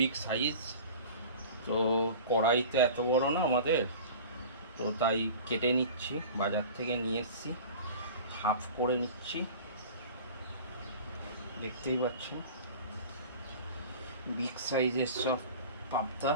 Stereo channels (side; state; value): both; inverted; correlation -0.39